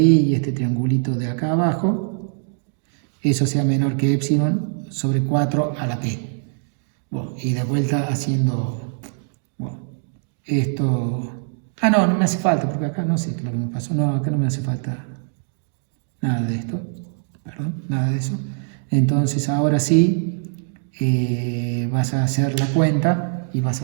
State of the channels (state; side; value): silent; left; 61 dB below the other